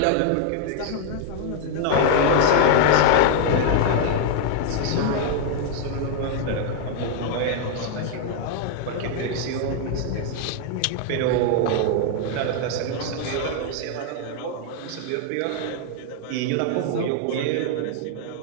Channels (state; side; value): different; both; correlation 0.00